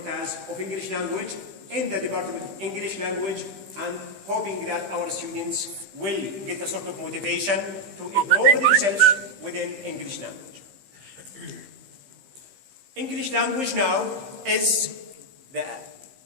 of English language in the Department of English Language, and hoping that our students will get a sort of motivation to improve themselves within English language. English language now is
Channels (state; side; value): late; left; 15 ms